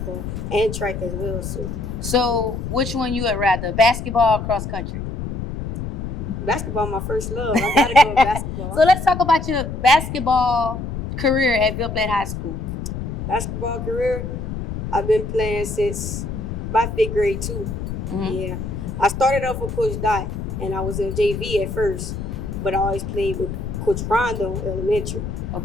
and track as well. So which one you would rather, basketball or cross country? Basketball, my first love. I gotta go with basketball. So let's talk about your basketball career at Ville Platt High School. Basketball career, I've been playing since my 5th grade too. Yeah, I started off with Coach Dot, and I was in JV at first, but I always played with Coach Rondo elementary.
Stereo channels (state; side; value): noise; left; rumble, 5 dB below the sound